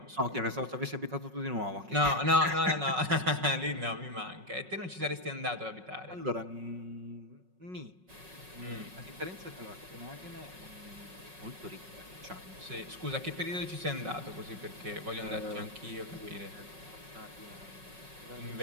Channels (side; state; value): left; late; 5.4 ms